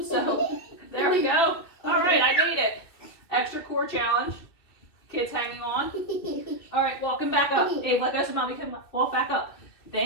so there we go. All right, I made it. Extra core challenge. Kids hanging on. All right, walking back up. Abe, let go so mommy can walk back up.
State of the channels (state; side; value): late; right; 2.9 ms